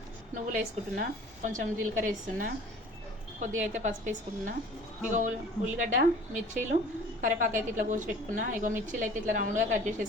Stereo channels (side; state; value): both; normal; correlation 0.47